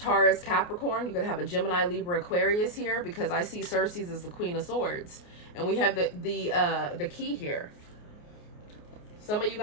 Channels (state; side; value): late; right; 28 ms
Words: Capricorn. You could have a Gemini, Libra, Aquarius here, because I see Cersei's as the Queen of Swords. And we have the key here. Some of you